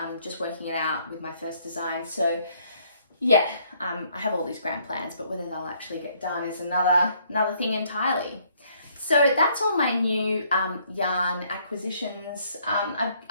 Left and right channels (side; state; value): both; inverted; correlation -0.66